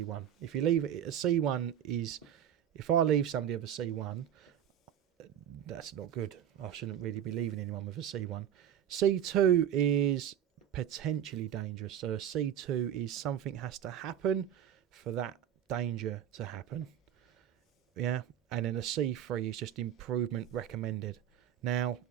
If you leave it, a C1 is, if I leave somebody with a C1, that's not good. I shouldn't really be leaving anyone with a C1. C2 is potentially dangerous. So a C2 is something has to happen for that danger to happen. Yeah, and then a C3 is just improvement recommended. Now,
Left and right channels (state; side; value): quieter; left; 10.0 dB